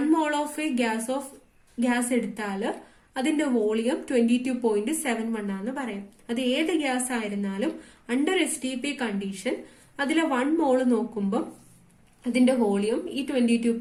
mole ഓഫ് എ ഗ്യാസ് എടുത്താൽ അതിന്റെ വോളിയം 22.71 ആണെന്ന് പറയാം. അത് ഏത് ഗ്യാസ് ആയിരുന്നാലും അണ്ടർ STP കണ്ടീഷൻ അതിലെ 1 mole നോക്കുമ്പോൾ അതിന്റെ വോളിയം ഈ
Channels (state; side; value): identical; both; correlation 1.00